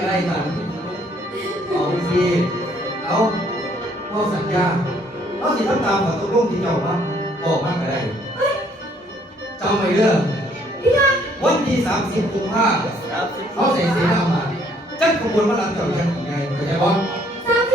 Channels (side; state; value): both; normal; correlation 0.65